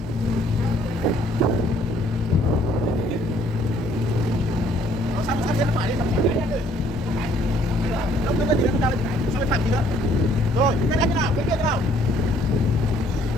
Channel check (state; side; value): normal; both; correlation 0.62